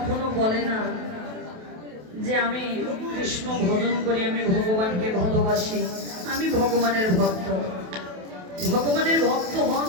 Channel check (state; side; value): late; left; 28 ms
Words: বলে না যে আমি কৃষ্ণ ভজন করি, আমি ভগবানকে ভালোবাসি, আমি ভগবানের ভক্ত। ভগবানের ভক্ত হন